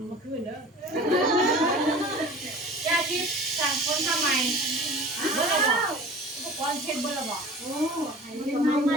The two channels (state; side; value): normal; both; correlation 0.41